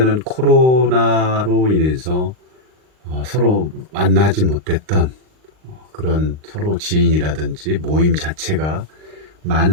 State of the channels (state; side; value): late; left; 39 ms